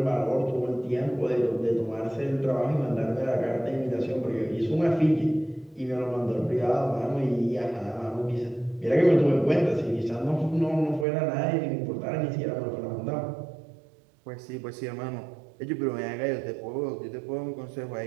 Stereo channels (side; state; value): left; drops out; at 11.1 s